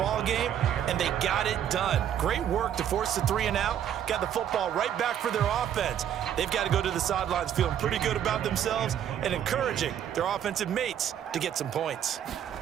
game, and they got it done. Great work to force the 3 and out. Got the football right back for their offense. They've got to go to the sidelines feeling pretty good about themselves and encouraging their offensive mates to get some points.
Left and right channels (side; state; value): left; quieter; 9.9 dB